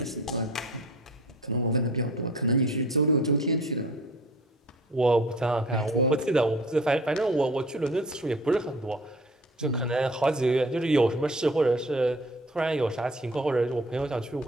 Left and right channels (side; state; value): both; normal; correlation 0.46